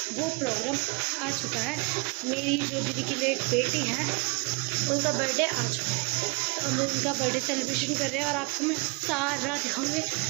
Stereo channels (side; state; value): left; quieter; 29.8 dB